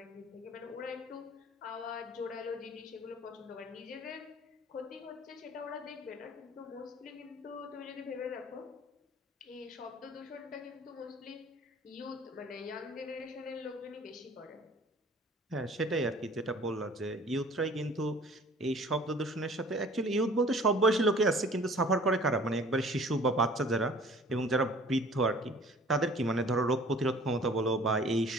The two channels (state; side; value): normal; both; correlation 0.50